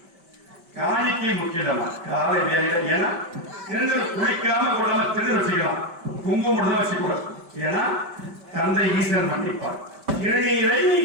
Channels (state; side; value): late; left; 5.2 ms